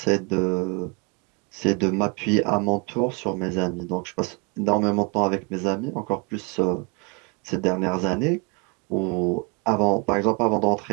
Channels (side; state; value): left; quieter; 31.0 dB